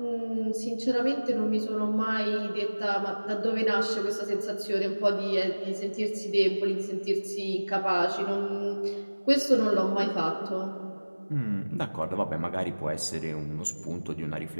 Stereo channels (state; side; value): inverted; both; correlation -1.00